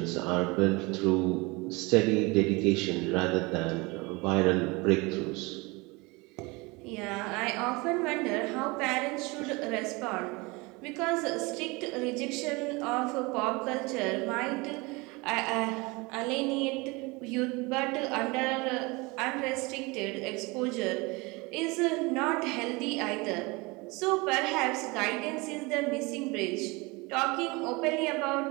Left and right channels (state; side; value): quieter; left; 25.4 dB